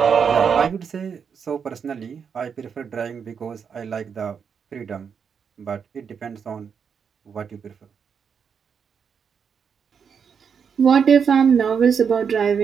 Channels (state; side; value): quieter; left; 6.7 dB